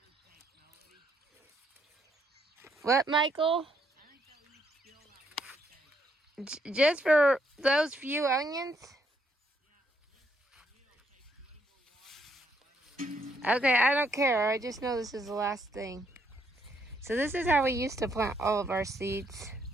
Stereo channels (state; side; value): normal; both; correlation 0.73